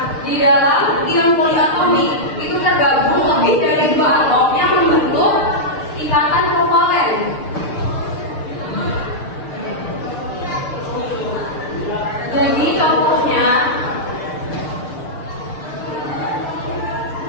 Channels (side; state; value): right; late; 6.7 ms